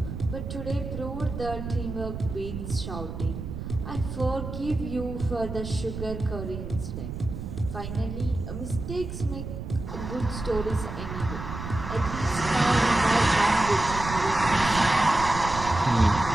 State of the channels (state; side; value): noise; right; rumble, 7 dB below the sound